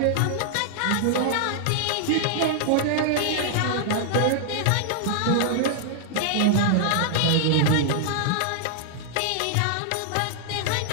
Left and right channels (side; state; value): both; different; correlation -0.01